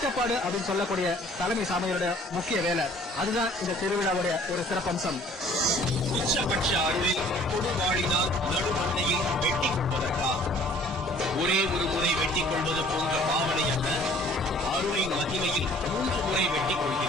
அப்படின்னு சொல்லக்கூடிய தலைமை சாமியோட முக்கிய வேலை. அதுதான் இந்த திருவிழாவுடைய ஒரு சிறப்பம்சம். உச்சபட்ச அருளில் கொடுவாளினால் நடுமண்டையில் வெட்டிக் கொள்வதற்காக ஒரே ஒரு முறை வெட்டிக் கொள்வது போன்ற பாவனை அல்ல. அருளின் மகிமையில் 3 முறை வெட்டிக்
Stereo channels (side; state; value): both; normal; correlation 0.54